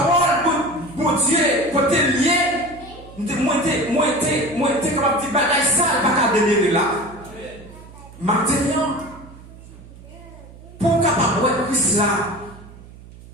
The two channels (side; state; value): right; noise; hum, 19 dB below the sound